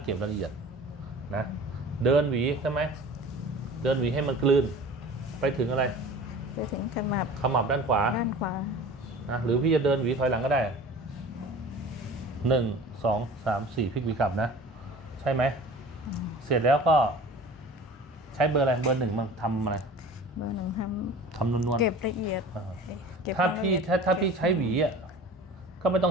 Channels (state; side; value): normal; both; correlation 0.41